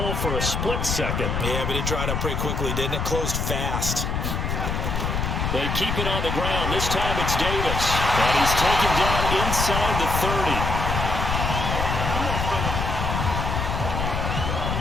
for a split second. Yeah, but it dried up pretty quickly, didn't it? Closed fast. They keep it on the ground. This time it's Davis, and he's taken down inside the 30.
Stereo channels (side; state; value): left; noise; rumble, 1 dB below the sound